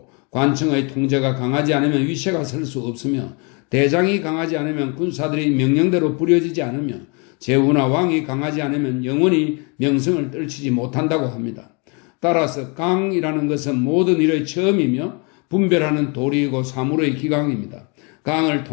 관청의 통제가 강하지 않으면 위세가 설 수 없으며 대장이 강하지 않으면 군사들이 명령대로 부려지지 않으며 제후나 왕이 강하지 않으면 영원히 명성을 떨치지 못한다고 합니다. 따라서 강이라는 것은 모든 일의 처음이며 분별하는 도리이고 사물의 기강입니다. 강을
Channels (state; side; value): quieter; right; 32.9 dB